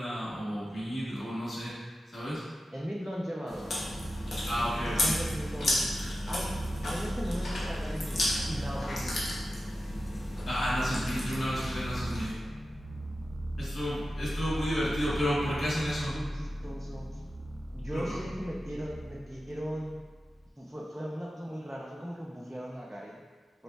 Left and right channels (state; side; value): normal; both; correlation 0.93